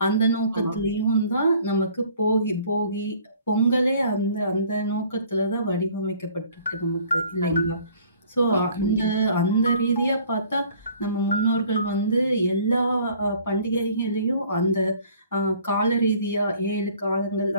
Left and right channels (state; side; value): inverted; both; correlation -0.55